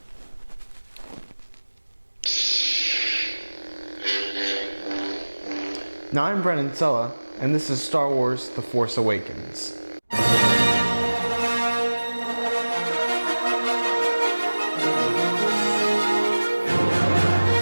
second. Now I'm Brandon Zello, and this is Star Wars The Force Awakens.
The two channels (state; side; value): inverted; both; correlation -1.00